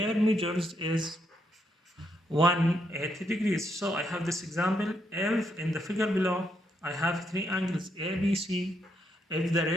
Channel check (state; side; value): normal; both; correlation 0.77